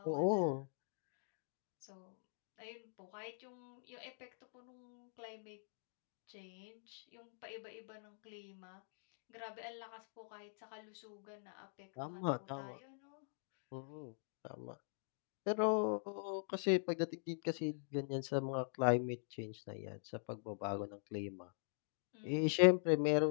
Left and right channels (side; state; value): right; silent; digital silence